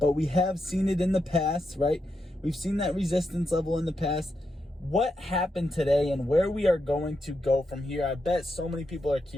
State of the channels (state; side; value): normal; both; correlation 0.84